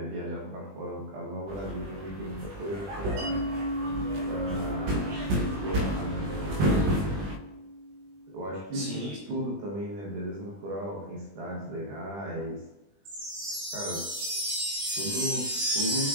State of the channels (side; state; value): left; late; 20 ms